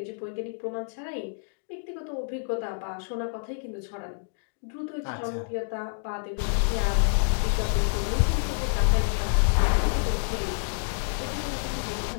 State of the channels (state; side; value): silent; right; digital silence